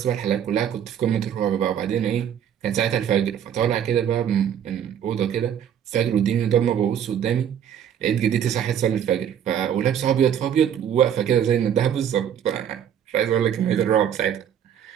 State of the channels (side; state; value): left; quieter; 9.2 dB